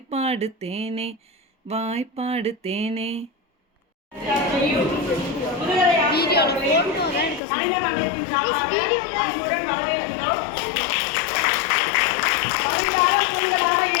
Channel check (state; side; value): drops out; right; at 7.4 s